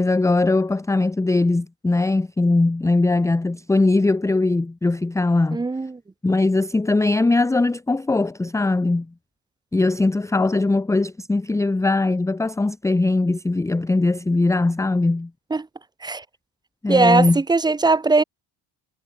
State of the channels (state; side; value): normal; both; correlation 0.87